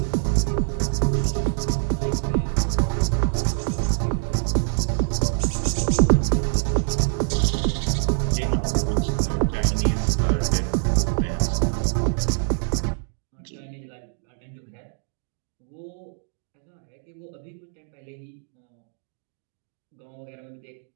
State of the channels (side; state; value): left; silent; digital silence